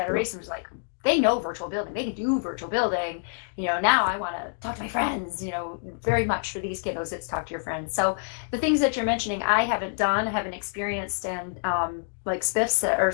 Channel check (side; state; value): right; silent; digital silence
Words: was like, they know virtual building, they can do virtual building. Now I want to talk to my friends. Very much for these kiddos, it's talk to your friends. So the things that you're mentioning, I haven't experienced, and like Spiff said, or